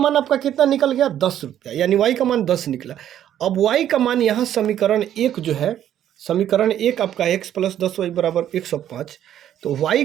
आपका कितना निकल गया, 10 रुपया, यानी y का मान 10 निकला। अब y का मान यहाँ समीकरण 1 जो है, समीकरण 1 आपका x प्लस 10y बराबर 105। तो y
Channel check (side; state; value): left; quieter; 10.9 dB